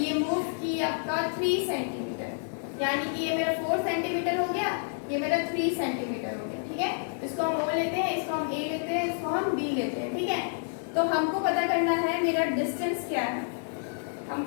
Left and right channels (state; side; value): silent; right; digital silence